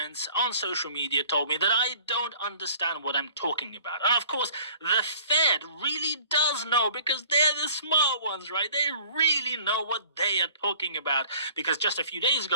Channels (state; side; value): inverted; both; correlation -0.50